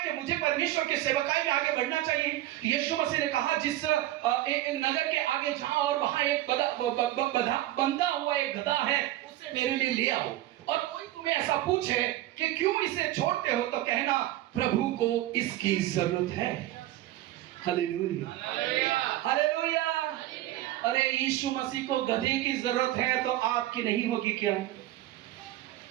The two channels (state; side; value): quieter; left; 15.0 dB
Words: कि मुझे परमेश्वर की सेवकाई में आगे बढ़ना चाहिए? यीशु मसीह ने कहा, जिस नगर के आगे जाओ और वहां एक बंधा हुआ एक गधा है, उससे मेरे लिए ले आओ। और कोई तुम्हें ऐसा पूछे कि क्यों इसे छोड़ते हो, तो कहना प्रभु को इसकी जरूरत है। Hallelujah, hallelujah. अरे यीशु मसीह को गधे की जरूरत है तो आपकी नहीं होगी क्या?